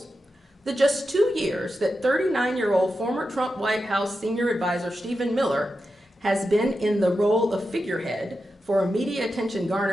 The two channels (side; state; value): both; normal; correlation 0.89